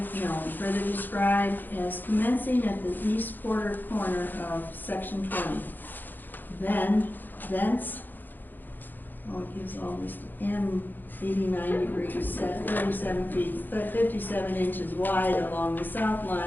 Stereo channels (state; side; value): late; right; 0.089 ms